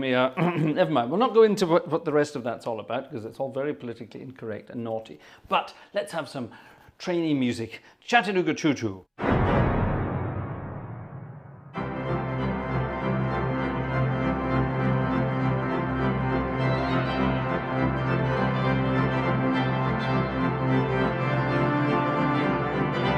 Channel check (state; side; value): identical; both; correlation 1.00